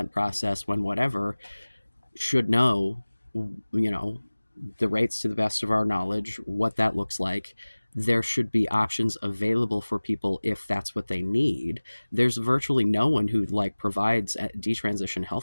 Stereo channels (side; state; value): both; inverted; correlation -1.00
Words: process, when whatever, should know, you know, the rates to the best of our knowledge, what that looks like. There should be options available for people if that's what they need. There's virtually no one who like provides detransition